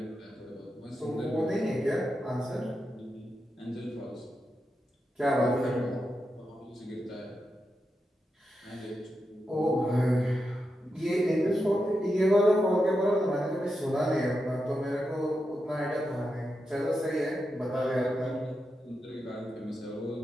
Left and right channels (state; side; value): normal; both; correlation 0.87